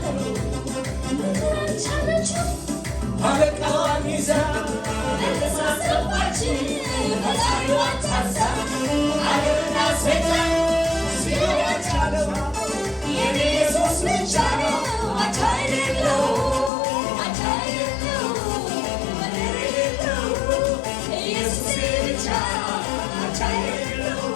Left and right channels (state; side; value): drops out; right; at 16.7 s